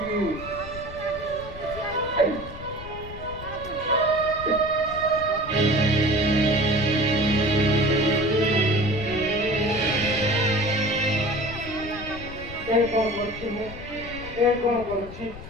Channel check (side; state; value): left; noise; rumble, 13 dB below the sound